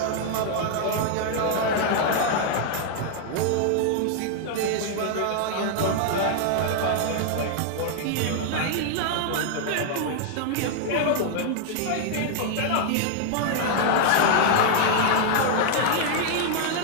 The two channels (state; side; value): different; both; correlation -0.01